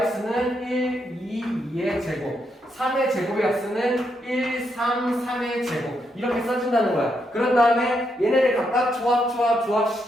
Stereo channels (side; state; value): both; normal; correlation 0.79